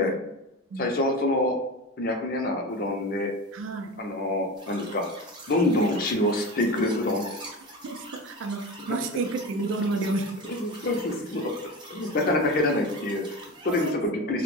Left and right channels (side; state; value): both; normal; correlation 0.27